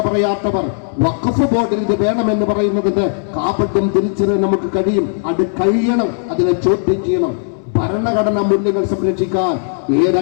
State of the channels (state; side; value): silent; right; digital silence